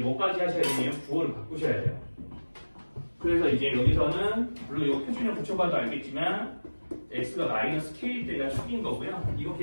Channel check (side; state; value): both; inverted; correlation -1.00